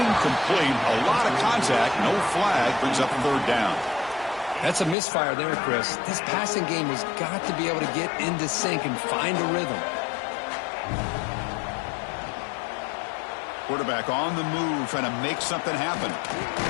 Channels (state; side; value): drops out; right; at 5.0 s